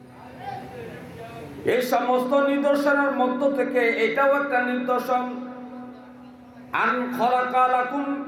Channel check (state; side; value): identical; both; correlation 1.00